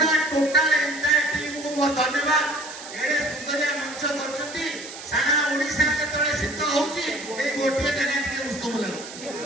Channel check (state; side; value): noise; right; hiss, 13 dB below the sound